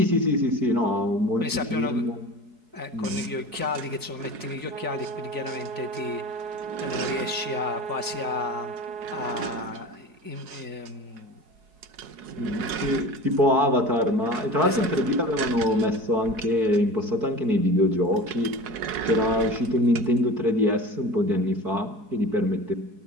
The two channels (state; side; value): late; left; 4.7 ms